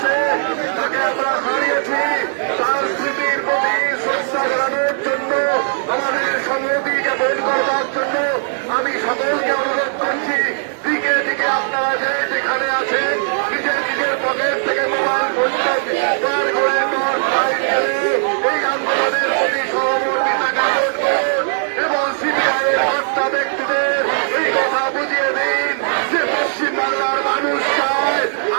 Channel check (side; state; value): left; silent; 66 dB below the other